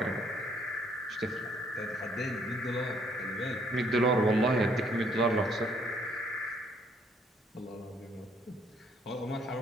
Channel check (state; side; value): normal; both; correlation 0.66